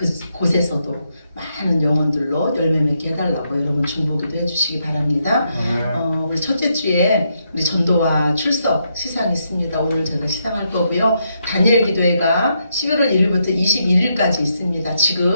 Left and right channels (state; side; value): inverted; both; correlation -0.79